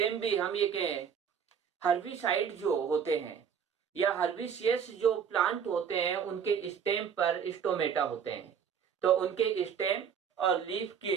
भी हम ये कहें हर्बिसाइड जो होते हैं या हर्बिसियस जो प्लांट होते हैं उनके स्टेम पर स्टोमेटा होते हैं। तो उनके स्टेम और लीफ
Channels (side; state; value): left; quieter; 7.4 dB